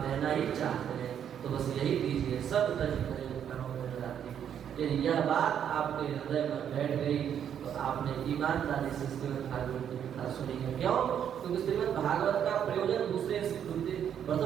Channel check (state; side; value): quieter; left; 9.0 dB